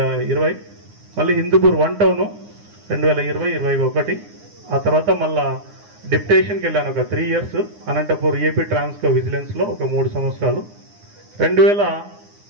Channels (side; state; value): left; late; 9.7 ms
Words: మళ్ళీ హిందూపూర్ 1 టౌన్ 2020-21, ఆ తర్వాత మళ్ళా డిప్యుటేషన్కి వెళ్ళాను ఒక 3 years Anantapur AP Transco vigilance లో ఒక 3 సంవత్సరాలు.